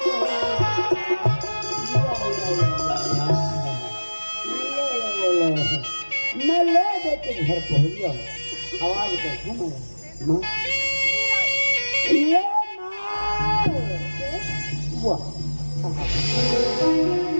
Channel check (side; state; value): both; inverted; correlation -1.00